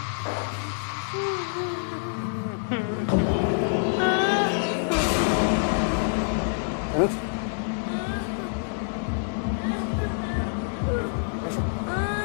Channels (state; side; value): silent; right; digital silence